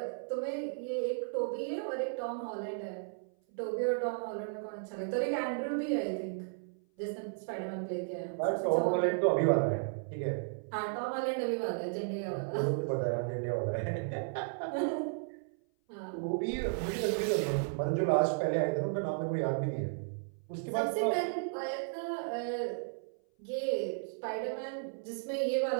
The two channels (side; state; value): left; silent; 55 dB below the other